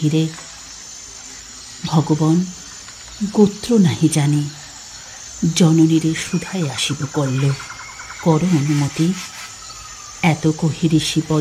ভগবান, গোত্র নাহি জানি, জননীরে সুধাই আসিব কল্ল, কর অনুমতি। এত কহি ঋষি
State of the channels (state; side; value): identical; both; correlation 1.00